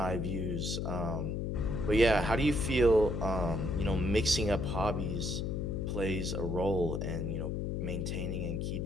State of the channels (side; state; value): left; noise; hum, 1 dB below the sound